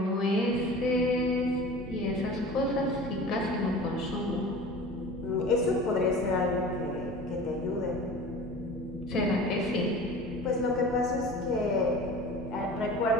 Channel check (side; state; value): both; normal; correlation 0.38